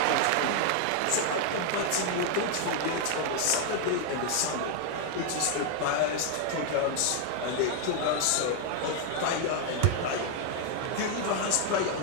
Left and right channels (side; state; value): both; different; correlation 0.00